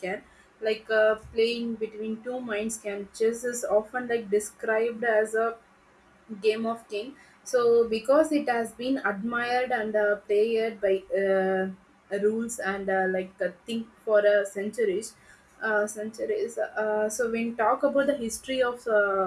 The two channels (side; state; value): both; identical; correlation 1.00